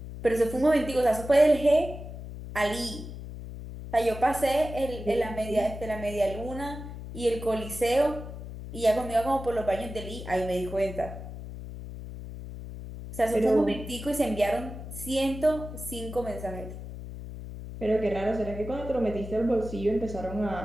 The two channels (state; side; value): noise; left; hum, 10 dB below the sound